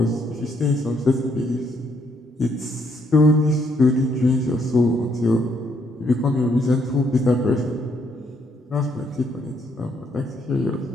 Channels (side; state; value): both; normal; correlation 0.72